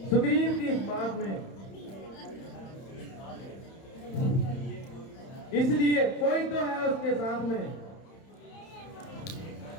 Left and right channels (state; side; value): late; right; 31 ms